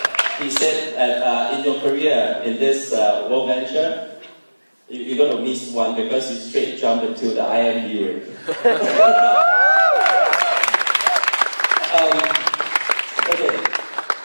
he said that in your career, in this WorldVenture, you're going to miss one because you straight jumped into the IMD ring. Okay.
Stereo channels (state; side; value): inverted; both; correlation -1.00